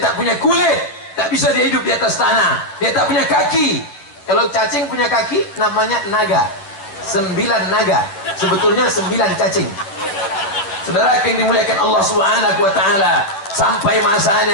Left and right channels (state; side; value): late; right; 10 ms